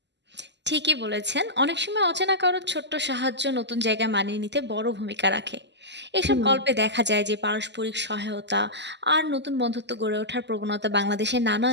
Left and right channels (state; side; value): late; left; 0.51 ms